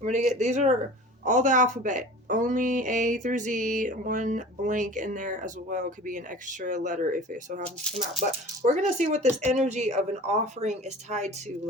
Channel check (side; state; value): both; normal; correlation 0.40